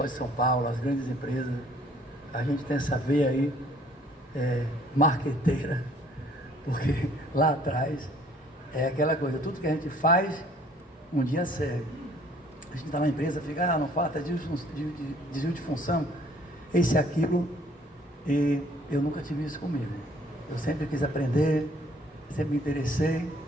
de São Paulo, as grandes empresas. A gente tem essa veia aí, marqueteira, porque lá atrás é aquela coisa, tudo que a gente faz, um dia serve. A gente está na empresa, fica, não falta desvio de função, esse e aquilo, e eu nunca tive isso comigo. Eu sempre quis aprender, sempre me interessei,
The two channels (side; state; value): both; normal; correlation 0.59